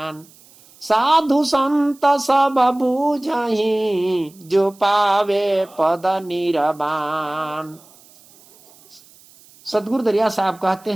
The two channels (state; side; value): noise; right; hiss, 26 dB below the sound